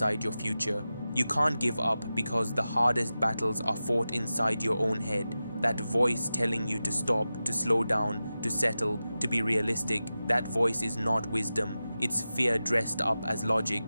your future. You can't give up because the hardest battles are fought inside your own head. That voice telling you to stop, to slow down, to settle, to be realistic, that voice is not wisdom. It's fear dressed up as logic.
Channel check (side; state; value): both; inverted; correlation -0.94